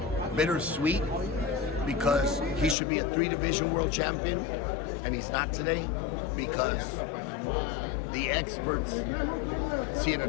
bittersweet, because he should be a 3-division world champion, and he's not today because the experts see it a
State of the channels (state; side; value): drops out; right; at 2.8 s